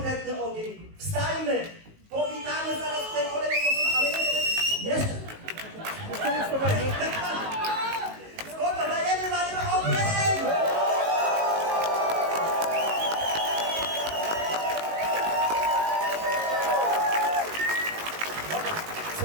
ogień, wstańmy, powitamy zaraz tutaj kolejną osobę, ale jeszcze. Spoko, dajemy ogień!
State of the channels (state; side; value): late; left; 19 ms